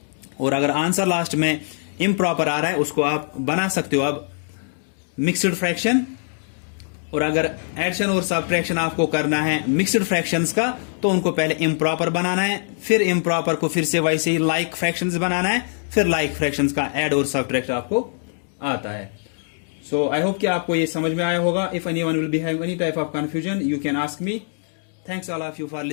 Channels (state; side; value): silent; right; digital silence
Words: और अगर आंसर लास्ट में इम्प्रॉपर आ रहा है उसको आप बना सकते हो अब मिक्सड फ्रैक्शन। और अगर एडिशन और सब्ट्रैक्शन आपको करना है मिक्सड फ्रैक्शंस का, तो उनको पहले इम्प्रॉपर बनाना है, फिर इम्प्रॉपर को फिर से वैसे ही लाइक फ्रैक्शंस बनाना है, फिर लाइक फ्रैक्शंस का ऐड और सब्ट्रैक्ट आपको आता है. सो आई होप कि आपको ये समझ में आया होगा. If anyone will be having any type of confusion, you can ask me. Thanks all of you for